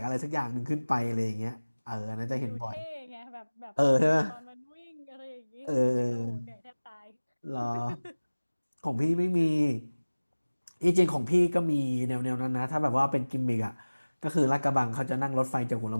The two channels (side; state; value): both; inverted; correlation -1.00